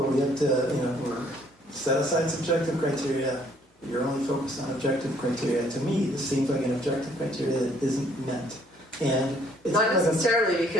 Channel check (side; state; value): both; normal; correlation 0.63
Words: where we have to, we're set aside subjective criteria. You're only focused on objective criteria. To me, this seems like an objective criteria that isn't met. And it's not necessarily,